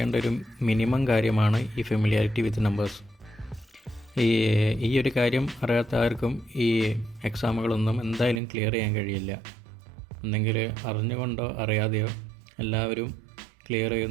ഒരു മിനിമം കാര്യമാണ് ഈ ഫെമിലിയാരിറ്റി വിത്ത് നമ്പേഴ്സ്. ഈ ഒരു കാര്യം അറിയാത്ത ആർക്കും ഈ എക്സാമുകളൊന്നും എന്തായാലും ക്ലിയർ ചെയ്യാൻ കഴിയില്ല. ഒന്നെങ്കിൽ അറിഞ്ഞുകൊണ്ടോ അറിയാതെയോ എല്ലാവരും ക്ലിയർ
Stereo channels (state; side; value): drops out; left; at 8.4 s